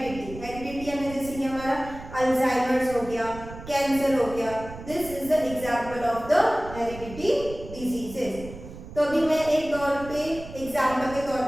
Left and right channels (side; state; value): right; noise; rumble, 13 dB below the sound